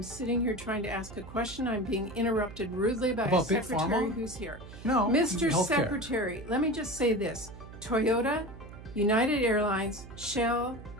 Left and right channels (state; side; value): noise; right; hum, 15 dB below the sound